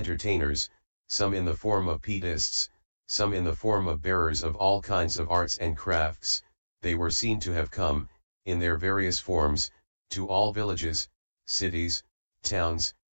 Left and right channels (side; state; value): both; inverted; correlation -1.00